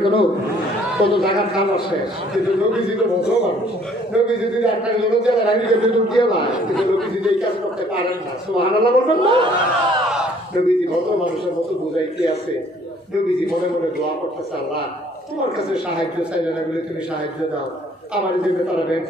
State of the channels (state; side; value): normal; both; correlation 0.60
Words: কত জায়গার খাবার শেষ কিন্তু নবীজি তো ভদ্র মানুষ নবীজি যদি একটা লোক যারা রাখি গেছে তো দিয়ে না কিন্তু নবীজি এই কাজ করতে পারেন না সুবহানাল্লাহ বলবেন না নবীজি ভদ্র মানুষের মতো বুঝাইতে আছে নবীজি মনে মনে দোয়া করতেছে আল্লাহ তোমার কাছে সাহায্য চাইলে না বলে তুমি সাহায্য দাও আমার দেবে তারা